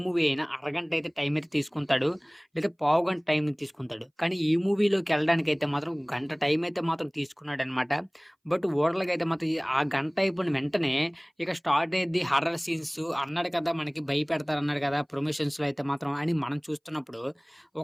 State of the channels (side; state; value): both; identical; correlation 1.00